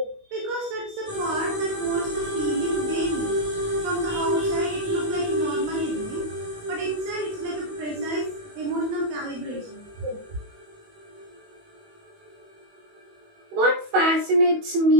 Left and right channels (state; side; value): late; left; 19 ms